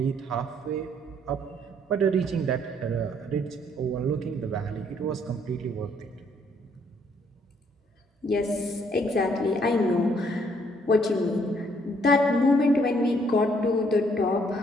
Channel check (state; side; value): normal; both; correlation 0.67